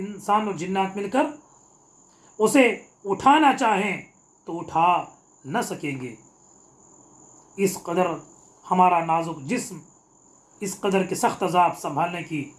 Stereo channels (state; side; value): identical; both; correlation 1.00